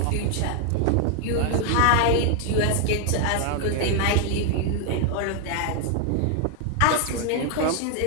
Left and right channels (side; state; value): both; different; correlation 0.00